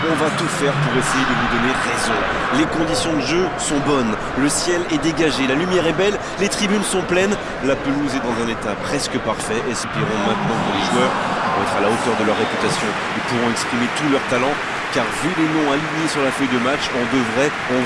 On va tout faire pour essayer de vous donner raison. Les conditions de jeu sont bonnes, le ciel est dégagé, la lumière est belle, les tribunes sont pleines, la pelouse est dans un état presque parfait. Espérons maintenant que les joueurs vont être à la hauteur de leur réputation et pourront exprimer tout leur talent, car vu les noms alignés sur la feuille de match, on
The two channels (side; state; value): both; identical; correlation 1.00